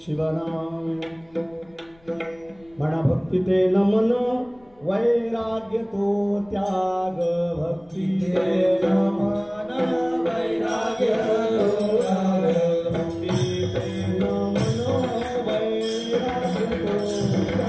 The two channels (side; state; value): left; noise; rumble, 29 dB below the sound